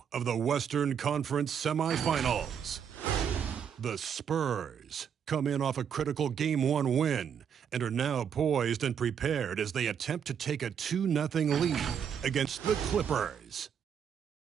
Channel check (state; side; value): quieter; left; 7.9 dB